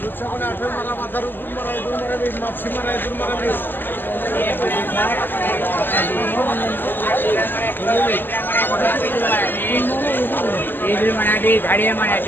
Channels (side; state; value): right; late; 0.093 ms